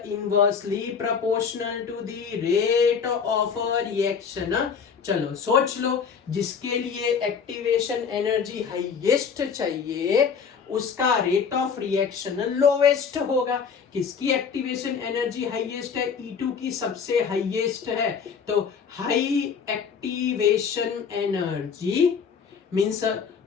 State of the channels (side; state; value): right; quieter; 6.3 dB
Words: proportional to the rate of reaction. चलो सोच लो, जिसके लिए एक्टिवेशन एनर्जी हाईएस्ट चाहिए उसका रेट ऑफ रिएक्शन लोवेस्ट होगा। किसकी एक्टिवेशन एनर्जी हाईएस्ट है? E2 की सबसे हाईएस्ट है। तो high activation energy means a